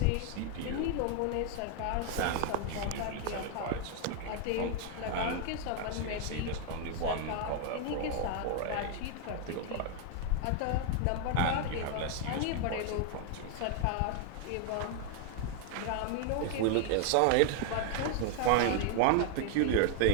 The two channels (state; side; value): different; both; correlation 0.00